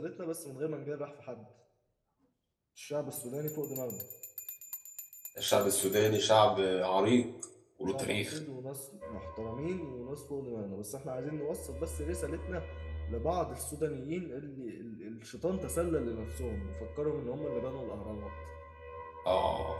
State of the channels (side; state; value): both; identical; correlation 1.00